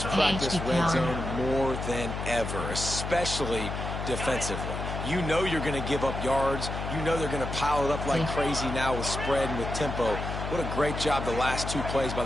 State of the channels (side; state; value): left; noise; hum, 5 dB below the sound